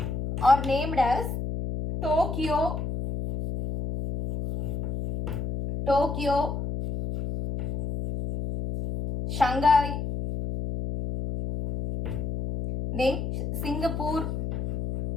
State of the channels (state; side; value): noise; left; hum, 3 dB below the sound